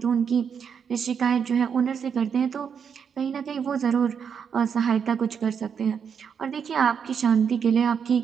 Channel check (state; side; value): quieter; left; 7.0 dB